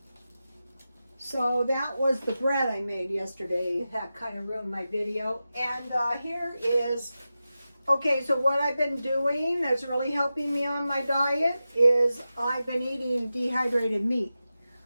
So that was the bread I made yesterday. That kind of ruined my video. And here is, okay, so what I've been doing that's really helping me on my diet is I've been eating dehydrated meat.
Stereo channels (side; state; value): both; inverted; correlation -0.93